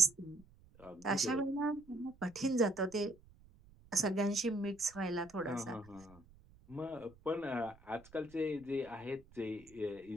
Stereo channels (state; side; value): noise; right; rumble, 25 dB below the sound